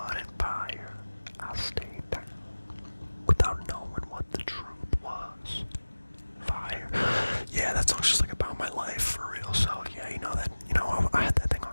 in fire. I stayed down without knowing what the truth was. Fire. Yeah, that song's just like about my life for real. So yeah, I had that thing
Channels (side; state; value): both; inverted; correlation -1.00